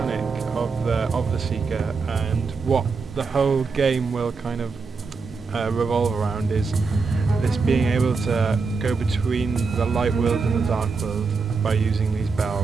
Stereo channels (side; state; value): left; quieter; 4.6 dB